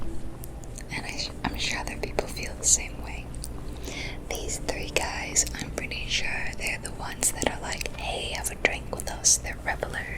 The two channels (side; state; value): both; identical; correlation 1.00